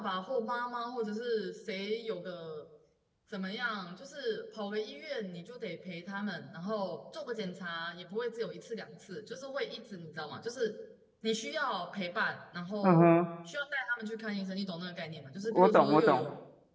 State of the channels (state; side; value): identical; both; correlation 1.00